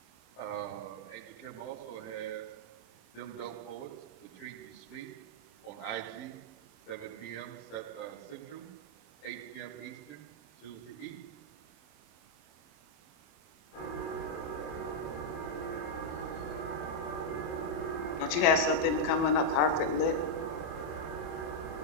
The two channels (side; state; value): right; late; 27 ms